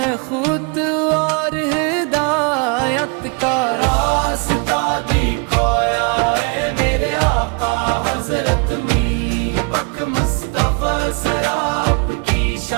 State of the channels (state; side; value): quieter; left; 33.5 dB